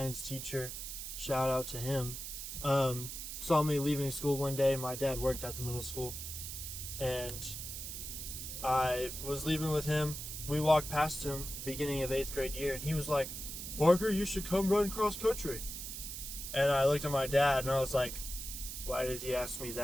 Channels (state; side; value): noise; right; hiss, 7 dB below the sound